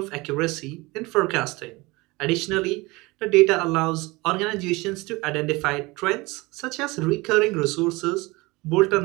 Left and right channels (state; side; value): quieter; left; 23.2 dB